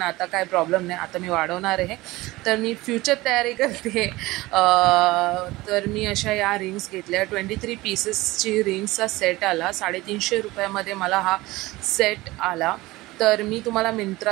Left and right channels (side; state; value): left; quieter; 19.7 dB